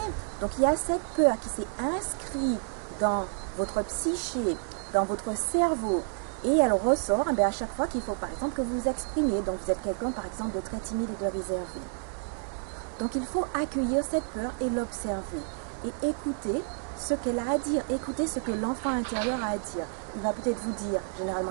Donc il y a cette peur qui s'est inscrite dans votre psyché, dans votre cerveau, et elle ressort à chaque fois qu'il faut par exemple que vous vous exprimiez. Donc vous êtes quelqu'un par exemple de très timide et de réservé. Donc il faut accueillir cette peur et l'observer et écouter ce qu'elle a à dire, écouter ce que l'enfant intérieur a à dire. Il va peut-être vous dire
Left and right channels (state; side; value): silent; left; 58 dB below the other